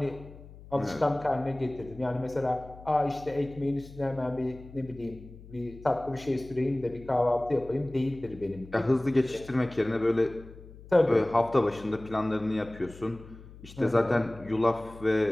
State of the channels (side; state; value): left; noise; hum, 18 dB below the sound